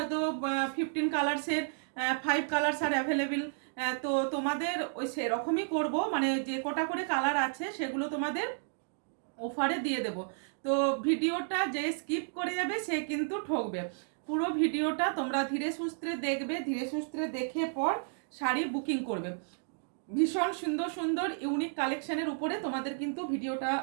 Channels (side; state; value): left; silent; digital silence